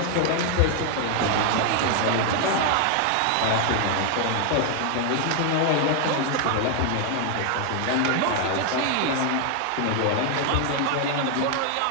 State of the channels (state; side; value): different; both; correlation 0.00